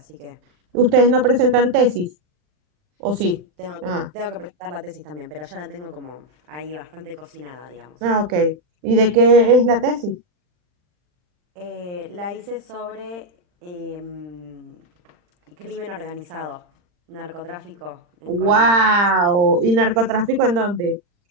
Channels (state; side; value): late; left; 40 ms